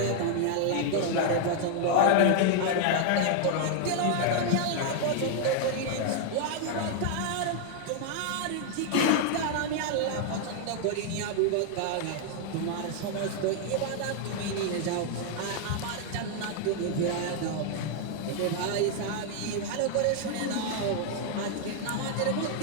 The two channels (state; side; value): different; both; correlation 0.00